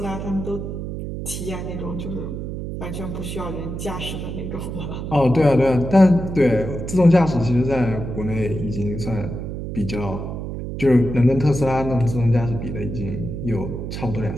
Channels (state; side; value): noise; right; hum, 6 dB below the sound